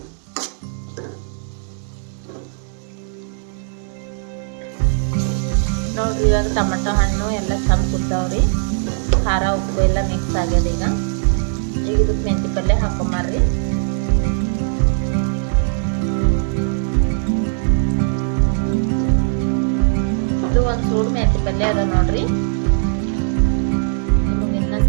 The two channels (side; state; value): left; silent; digital silence